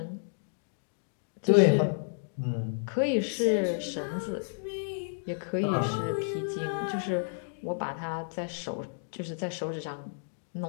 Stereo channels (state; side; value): silent; right; digital silence